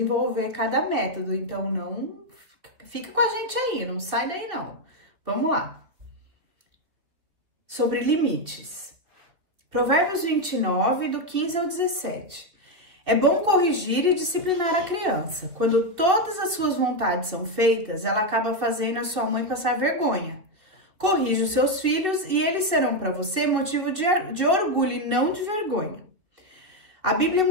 cada método. Então, não fica com a gente aí, não sai daí não. Vamos lá. Sobre limites. Provérbios 29, do 15 ao 17. É bom corrigir e disciplinar a criança. Quando todas as suas vontades são feitas, ela acaba fazendo a sua mãe passar vergonha. Corrija os seus filhos e eles serão para você motivo de orgulho e não de vergonha. A Bíblia é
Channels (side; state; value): left; late; 2.8 ms